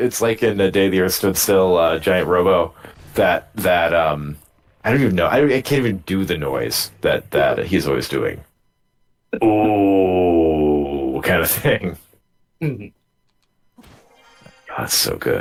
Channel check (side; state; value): both; identical; correlation 1.00